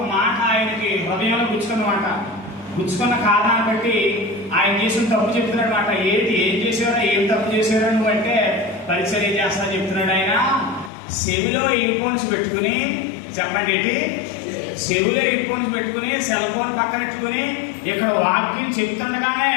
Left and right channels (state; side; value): drops out; right; at 10.9 s